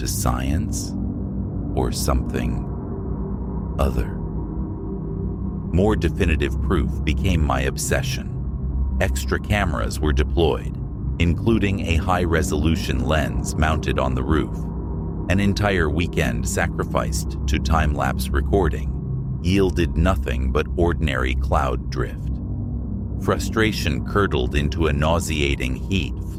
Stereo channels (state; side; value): identical; both; correlation 1.00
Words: science, or something other? More definitive proof became my obsession. Extra cameras were deployed, including a high-resolution lens mounted on the roof. An entire weekend sacrificed to time-lapse recording yielded nothing but ordinary cloud drift. Frustration curdled into a nauseating heat,